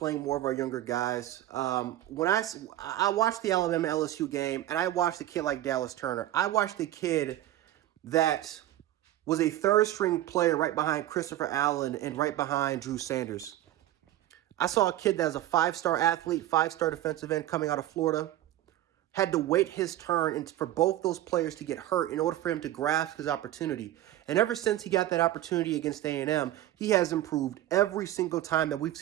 more of our younger guys. When I watched the Alabama LSU game, and I watched a kid like Dallas Turner. I watched a kid that was a third string player right behind Christopher Allen and right behind Drew Sanders. I saw a kid that was a five-star athlete, five-star defensive end coming out of Florida. Had to wait his turn and for both those players to get hurt in order for him to grasp his opportunity. And ever since he got that opportunity against A&M, he has improved every single time that we've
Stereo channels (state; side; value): quieter; left; 13.8 dB